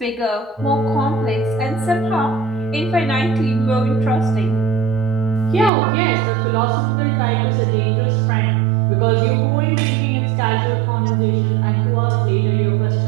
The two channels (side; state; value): left; drops out; at 5.7 s